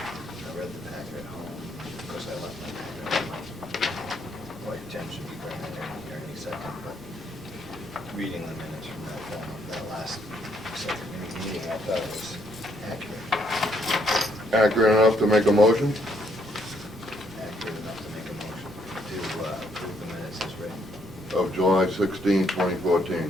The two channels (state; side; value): noise; right; rumble, 21 dB below the sound